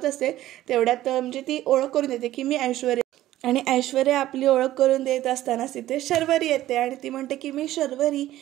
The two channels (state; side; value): quieter; left; 14.4 dB